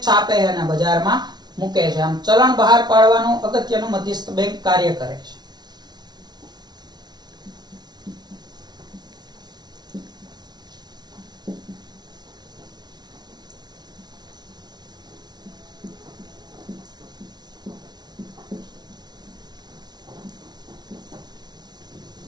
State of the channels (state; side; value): late; left; 0.20 ms